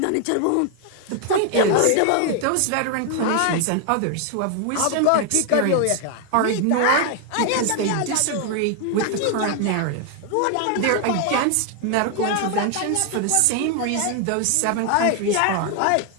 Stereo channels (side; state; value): both; different; correlation 0.00